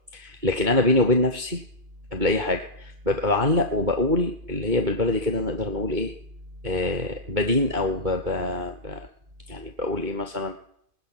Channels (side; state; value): left; late; 2.5 ms